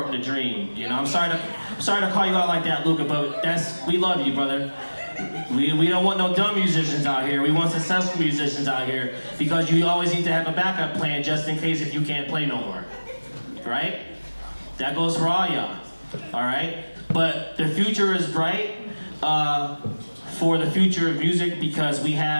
the dream. I'm sorry to call you out like that, Luca, but we love you, brother. We don't want no dumb musicians out here. We want successful musicians out here, because you always need to have a backup plan just in case if you can't play no more. Right? That goes for all y'all. All right? But the future is bright for the future of music, because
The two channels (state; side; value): inverted; both; correlation -1.00